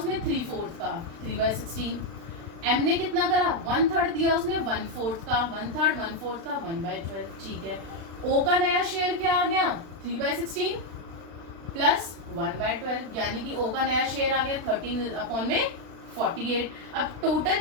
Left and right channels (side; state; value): left; late; 36 ms